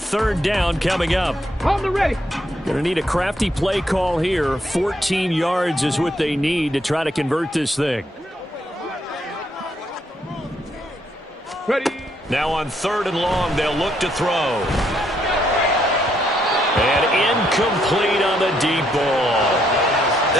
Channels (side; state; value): both; normal; correlation 0.74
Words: down coming up. On the ready. Going to need a crafty play call here. 14 yards is what they need to try to convert this thing. Ready. Now on 3rd and long, they'll look to throw. And incomplete on the deep ball.